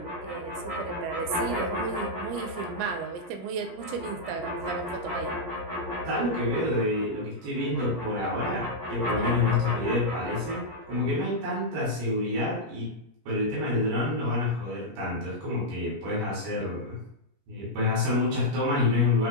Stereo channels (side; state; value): left; late; 17 ms